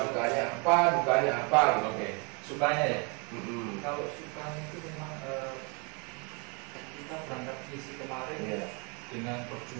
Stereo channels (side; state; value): left; quieter; 32.7 dB